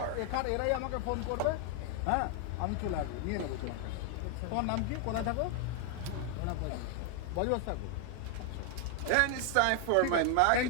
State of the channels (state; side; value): different; both; correlation 0.01